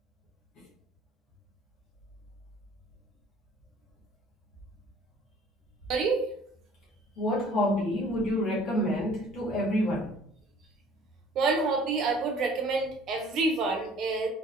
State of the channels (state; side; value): normal; both; correlation 0.53